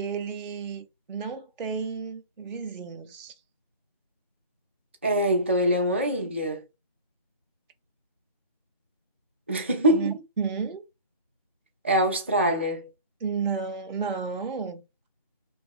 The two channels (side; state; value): both; inverted; correlation -0.34